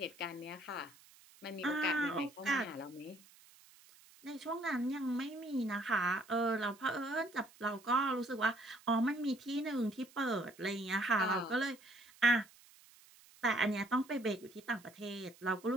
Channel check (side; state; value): right; noise; hiss, 25 dB below the sound